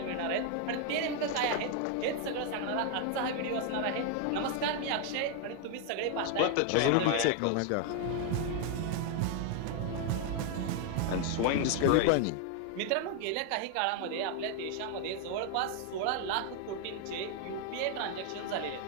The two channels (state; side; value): different; both; correlation 0.00